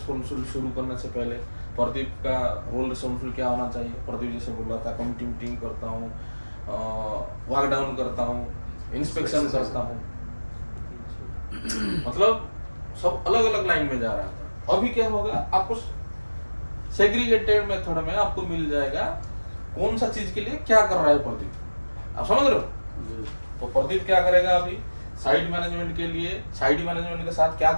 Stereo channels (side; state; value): both; inverted; correlation -1.00